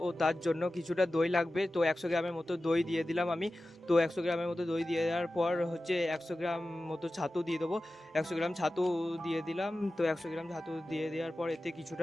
ও তার জন্য কিছুটা দই লাগবে। তো 100 গ্রামের মতো দই দিয়ে দিলাম আমি। তো 100 গ্রামের মতো দই দিয়ে দেওয়ার পর 100 গ্রাম মতো ছাতু দিয়ে দেবো। 100 গ্রাম ছাতু দিয়ে দিলাম। তো 100 গ্রাম ছাতু দিয়ে দেওয়ার পর এতে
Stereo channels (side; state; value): both; normal; correlation 0.95